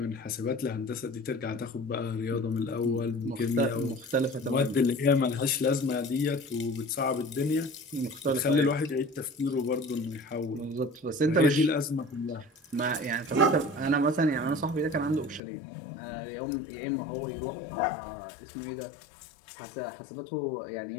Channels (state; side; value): drops out; right; at 15.4 s